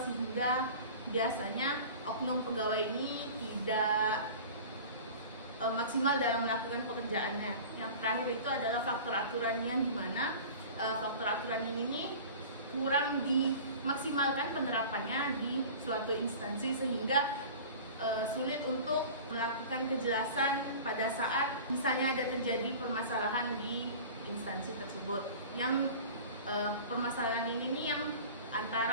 sehingga biasanya oknum pegawai ini tidak maksimal dalam melakukan pekerjaannya. Yang terakhir itu adalah faktor aturan, yang dimana faktor aturan ini kurang dimaksimalkan penerapannya di suatu instansi, sehingga sulit untuk melakukan kejelasan pada saat misalnya ada terjadi permasalahan di instansi tersebut. Yang permasalahan ini yang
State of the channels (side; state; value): both; inverted; correlation -0.39